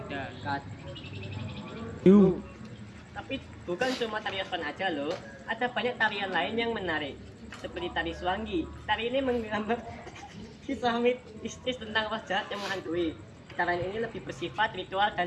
Tapi bukan cuma tari Yospan aja loh, ada banyak tarian lain yang menarik. seperti tari Suanggi. Tari ini menggambar kisah mistis tentang roh jahat yang menghantui. Tarian ini lebih bersifat ritual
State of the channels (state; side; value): identical; both; correlation 1.00